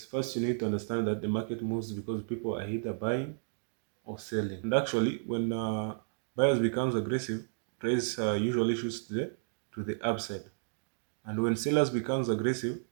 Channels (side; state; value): left; silent; digital silence